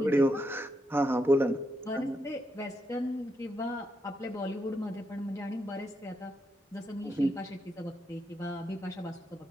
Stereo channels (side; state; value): both; normal; correlation 0.82